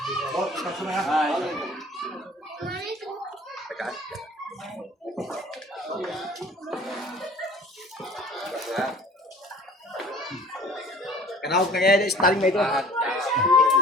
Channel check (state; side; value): normal; both; correlation 0.48